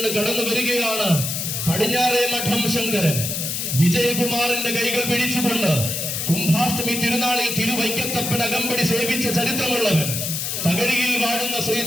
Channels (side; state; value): left; noise; hiss, 2 dB below the sound